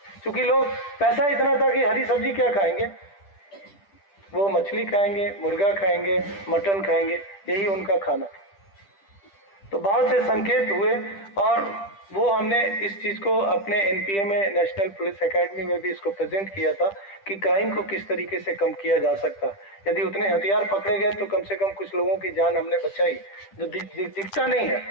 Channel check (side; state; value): right; late; 10 ms